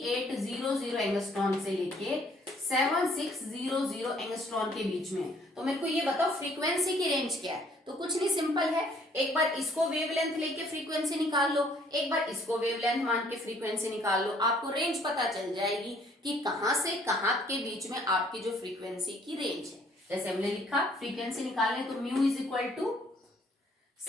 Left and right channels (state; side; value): normal; both; correlation 0.62